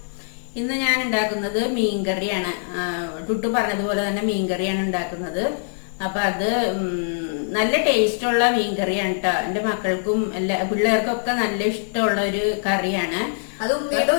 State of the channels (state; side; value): silent; right; digital silence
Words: ഇന്ന് ഞാൻ ഉണ്ടാക്കുന്നത് മീൻകറിയാണ്. ടുട്ടു പറഞ്ഞതുപോലെ തന്നെ മീൻകറിയാണ് ഉണ്ടാക്കുന്നത്. അപ്പൊ അത് നല്ല ടേസ്റ്റുള്ള മീൻകറിയാണ് കേട്ടോ. എന്റെ മക്കൾക്കും എല്ലാ പിള്ളേർക്കും ഒക്കെ നല്ല ഇഷ്ടമുള്ള ഒരു കറിയാണ്. അത് ഉമ്മയുടെ